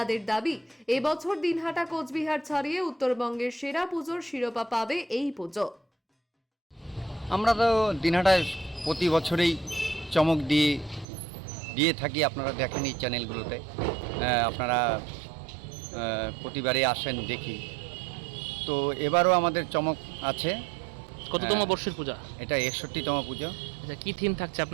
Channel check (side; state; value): left; drops out; at 11.1 s